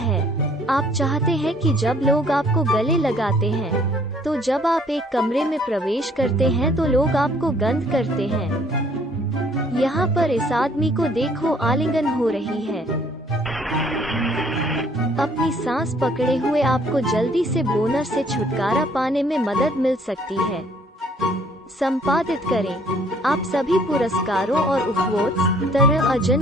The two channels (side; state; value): both; normal; correlation 0.61